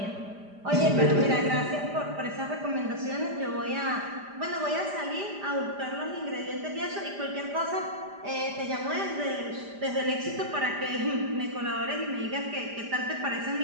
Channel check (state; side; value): late; left; 5.0 ms